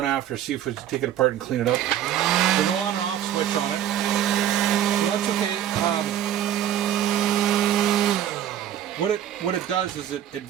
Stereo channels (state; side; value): quieter; left; 11.0 dB